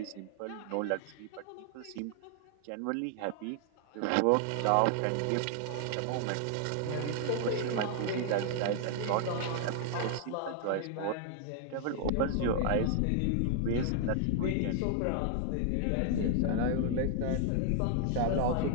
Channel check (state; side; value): different; both; correlation 0.00